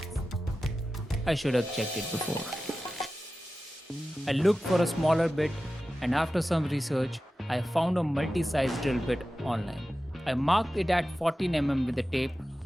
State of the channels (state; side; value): normal; both; correlation 0.94